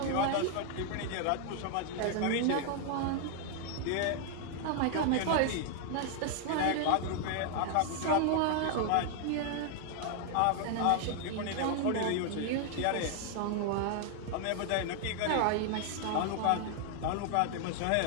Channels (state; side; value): different; both; correlation 0.00